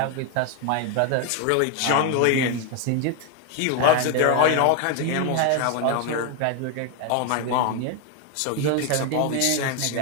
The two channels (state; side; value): different; both; correlation 0.01